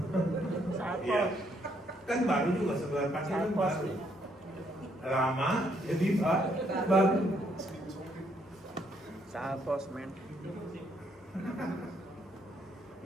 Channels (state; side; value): normal; both; correlation 0.71